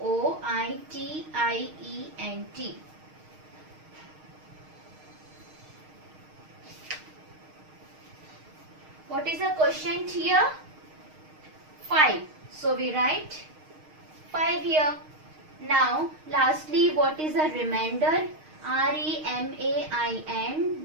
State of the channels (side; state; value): left; late; 6.5 ms